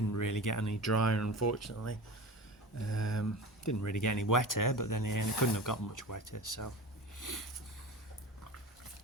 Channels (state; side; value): normal; both; correlation 0.31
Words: really get any drier unfortunately. Didn't really get any wetter, but then it couldn't have gotten much wetter. So